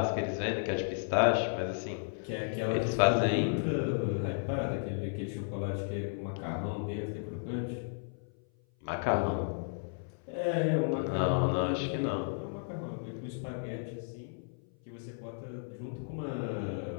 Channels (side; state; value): right; silent; 55 dB below the other